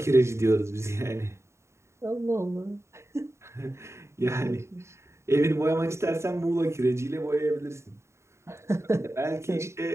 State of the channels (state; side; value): late; left; 0.13 ms